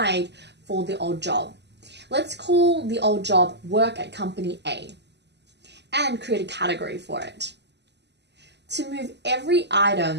for the old job. Let's call the old job Work at Company A and create a category for it. To move every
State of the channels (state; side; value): late; left; 0.50 ms